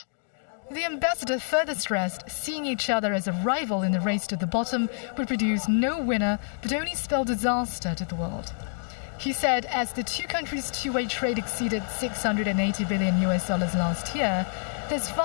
The ambassador further stressed seeing each other as a rival in the race to the bottom would produce no winner but only spell disaster to the world. He said as the two countries' two-way trade exceeded $680 billion last year, there's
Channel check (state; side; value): silent; right; digital silence